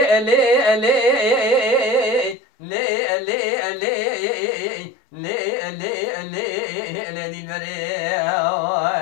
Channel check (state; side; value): drops out; right; at 2.4 s